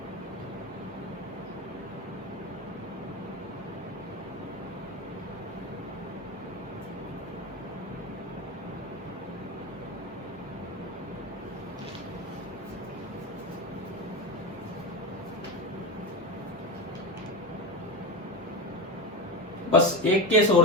बस एक केस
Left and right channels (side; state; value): both; normal; correlation 0.19